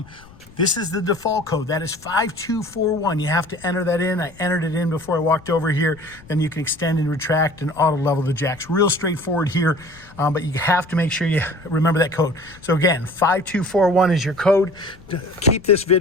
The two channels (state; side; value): noise; left; rumble, 23 dB below the sound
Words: This is the default code. That is 5241. You have to enter that in. I entered it in before I walked over here. Then you can extend and retract and auto level the jacks. Real straightforward here, but you have to make sure you remember that code. So again, 5241 is your code. Keep this